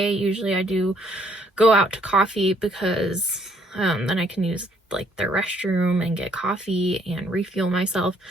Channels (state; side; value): normal; both; correlation 0.66